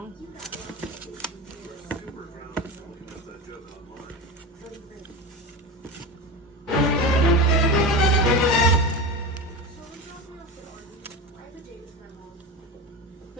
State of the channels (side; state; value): both; normal; correlation 0.23